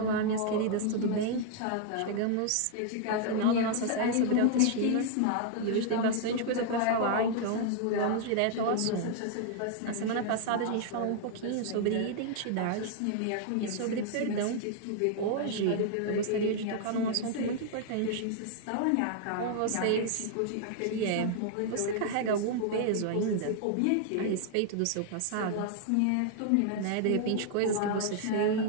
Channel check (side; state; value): both; different; correlation -0.01